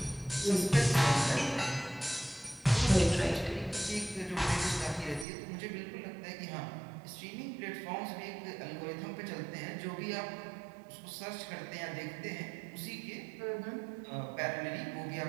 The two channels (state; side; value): drops out; left; at 5.2 s